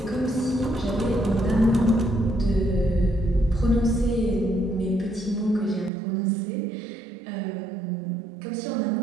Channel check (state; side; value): drops out; left; at 5.9 s